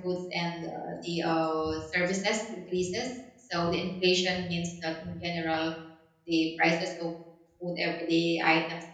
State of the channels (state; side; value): identical; both; correlation 1.00